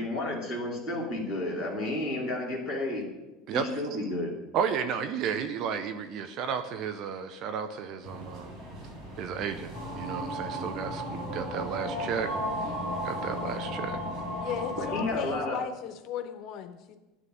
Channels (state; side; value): normal; both; correlation 0.31